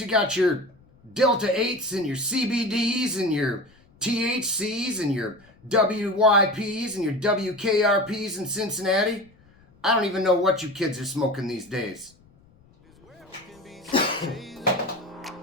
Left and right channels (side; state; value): left; noise; rumble, 30 dB below the sound